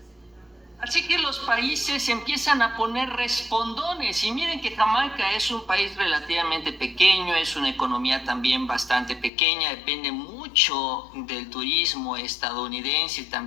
Así que los países empiezan a poner respondones, y miren que Jamaica es un país relativamente pequeño, es una economía también bastante pequeña, depende mucho del turismo estadounidense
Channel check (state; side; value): drops out; right; at 9.3 s